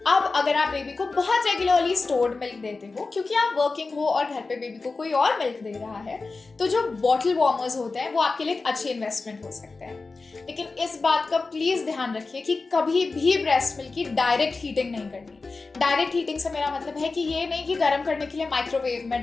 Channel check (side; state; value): right; quieter; 3.9 dB